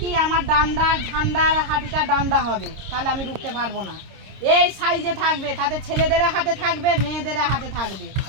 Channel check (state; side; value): late; left; 26 ms